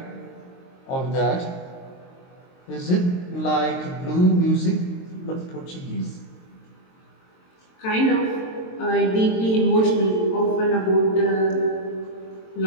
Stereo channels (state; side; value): late; right; 22 ms